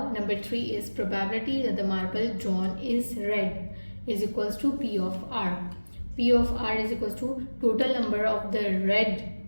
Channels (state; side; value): inverted; both; correlation -1.00